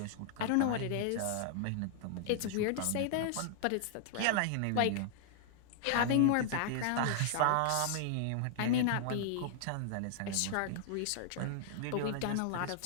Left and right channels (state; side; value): different; both; correlation -0.01